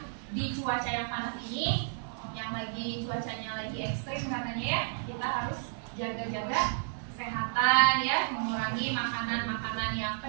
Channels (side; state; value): left; silent; 57 dB below the other